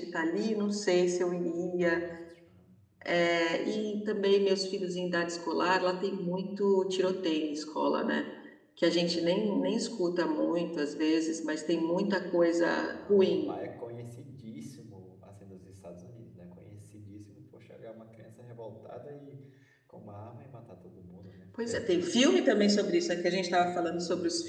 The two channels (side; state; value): both; identical; correlation 1.00